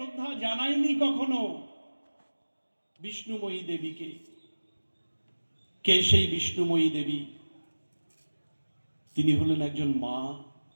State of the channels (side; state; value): both; inverted; correlation -1.00